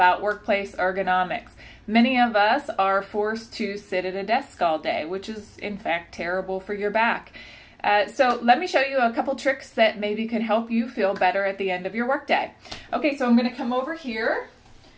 workplace ergonomics. Many of us are forced to sit at a desk all day, which is in fact terrible for your back. So let me show you a couple tricks that maybe could help you feel better at the end of your workday. Okay, so I'm going to come over here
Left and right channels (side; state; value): both; identical; correlation 1.00